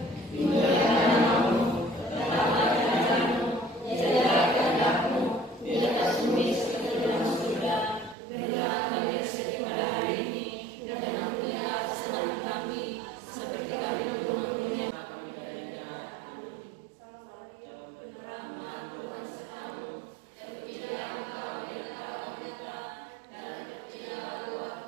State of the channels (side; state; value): left; drops out; at 8.2 s